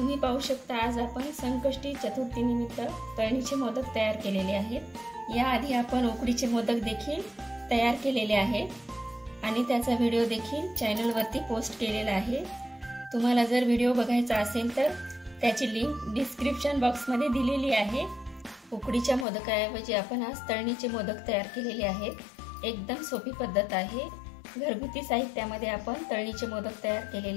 पाहू शकता आज आपण संकष्टी चतुर्थी निमित्त तळणीचे मोदक तयार केलेले आहेत। याआधी आपण उकडीचे मोदक देखील तयार केलेले आहेत आणि त्याचा व्हिडिओ देखील चॅनलवरती पोस्ट केलेला आहे। तुम्हाला जर व्हिडिओ बघायचा असेल तर त्याची लिंक डिस्क्रिप्शन बॉक्समध्ये दिलेली आहे। उकडीच्या मोदकाऐवजी आपण आज तळणीचे मोदक तयार केलेले आहेत। एकदम सोपी पद्धत आहे। घरगुती साहित्यामध्ये आपण तळणीचे मोदक तयार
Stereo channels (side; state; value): right; drops out; at 19.2 s